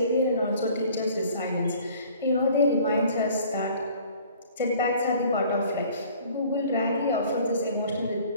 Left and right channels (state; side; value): inverted; both; correlation -0.52